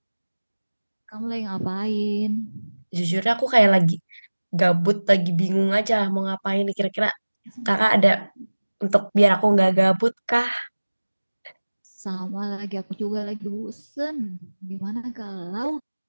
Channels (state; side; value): inverted; both; correlation -1.00